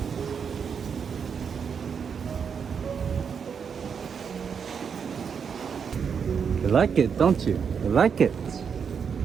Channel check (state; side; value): quieter; left; 6.7 dB